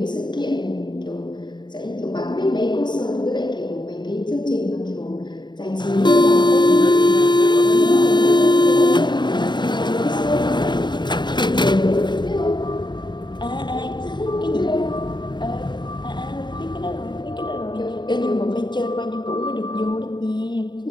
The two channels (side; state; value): right; late; 0.22 ms